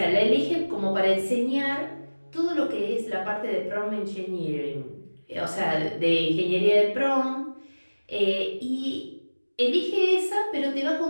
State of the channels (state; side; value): inverted; both; correlation -1.00